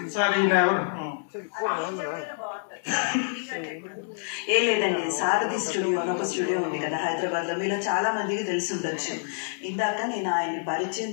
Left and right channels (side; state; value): right; silent; 60 dB below the other